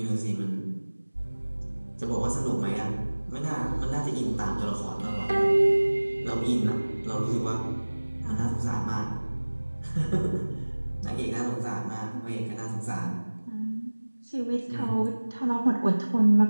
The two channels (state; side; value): inverted; both; correlation -1.00